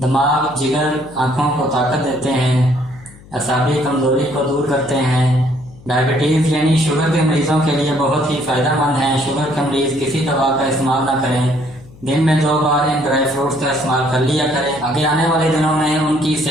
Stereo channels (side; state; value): left; noise; hum, 22 dB below the sound